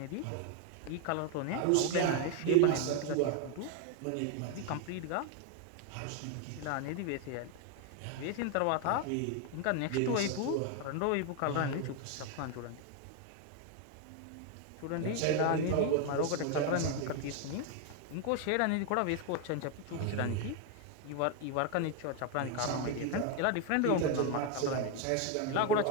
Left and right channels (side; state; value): both; different; correlation 0.01